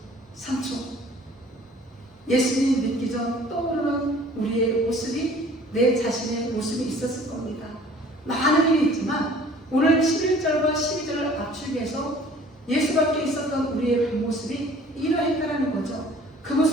3초. 예수님 믿기 전 떠오르는 우리의 모습이, 내 자신의 모습이 있었을 겁니다. 많은 일이 있지만 오늘 11절과 12절을 압축해서 예수밖에 있었던 우리의 그 모습이 이러했다는 거죠. 그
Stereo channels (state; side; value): normal; both; correlation 0.51